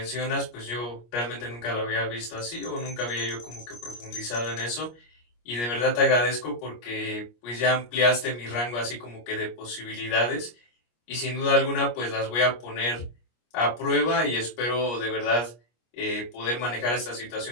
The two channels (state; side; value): late; right; 25 ms